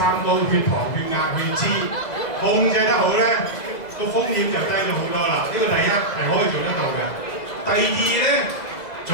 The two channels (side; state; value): right; late; 2.0 ms